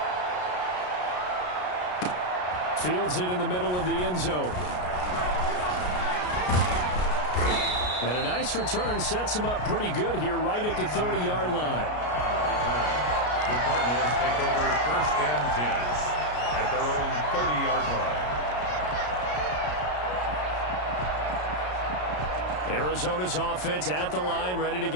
Fields it in the middle of the end zone. And a nice return sets him up pretty good here right at the 30-yard line. The Cardinals take over 1st and 10 at their own 30-yard line. Arizona's offense at the line, ready to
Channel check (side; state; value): right; late; 33 ms